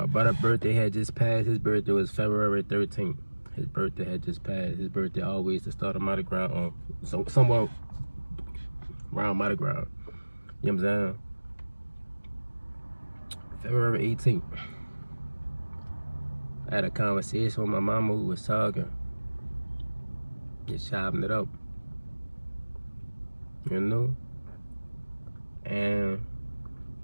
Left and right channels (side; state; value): both; inverted; correlation -1.00